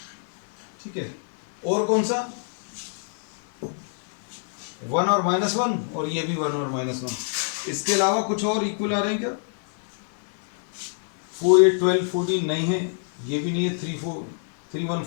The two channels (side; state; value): right; silent; 61 dB below the other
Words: ठीक है, और कौन सा 1 और -1, और ये भी 1 और -1। इसके अलावा कुछ और इक्वल आ रहे हैं क्या, 4 8 12 14 नहीं है, ये भी नहीं है, 3 1